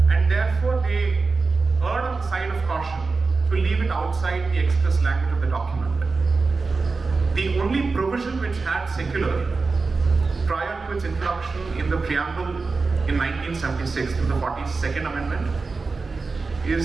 And therefore they erred on the side of caution to leave it outside the express language of the document. The only provision which had secular prior to its introduction in the preamble in 1976 through the 42nd Amendment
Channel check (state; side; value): quieter; left; 4.2 dB